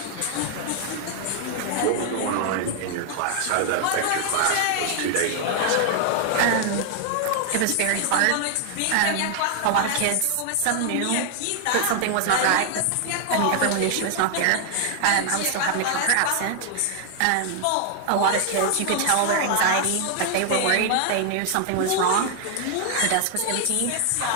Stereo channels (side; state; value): both; different; correlation 0.00